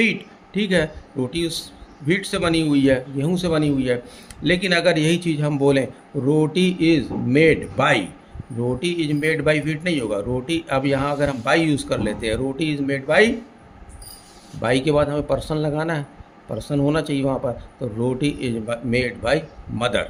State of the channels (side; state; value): both; identical; correlation 1.00